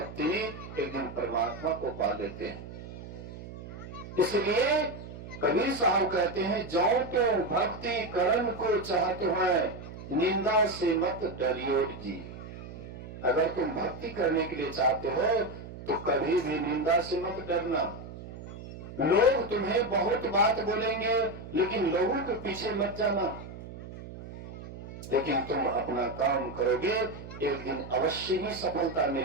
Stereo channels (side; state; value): right; noise; hum, 12 dB below the sound